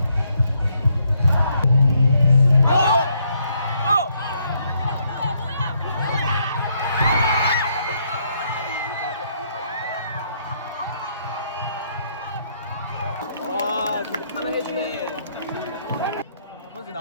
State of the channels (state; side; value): inverted; both; correlation -0.72